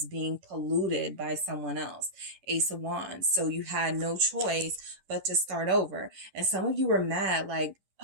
being polluted by someone else. Ace of Wands. So you had no choice but to start over. And some of you were mad, like,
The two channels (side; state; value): left; late; 10 ms